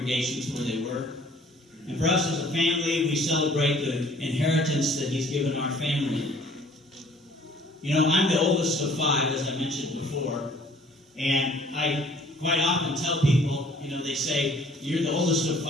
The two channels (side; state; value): both; normal; correlation 0.55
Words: where they were, and for us as a family, we celebrate the inheritance that he's given our family. You know, I'm the oldest of 5, as I mentioned before, and I quite often tell people, you know, they say, you're the oldest of